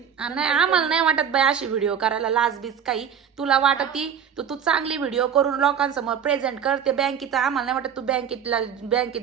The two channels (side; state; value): left; quieter; 7.9 dB